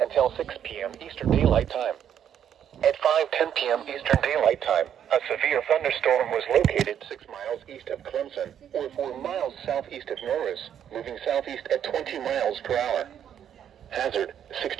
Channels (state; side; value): quieter; left; 9.3 dB